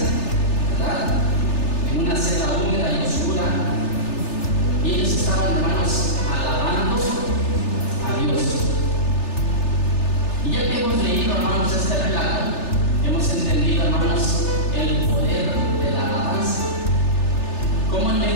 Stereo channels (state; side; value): late; right; 3.3 ms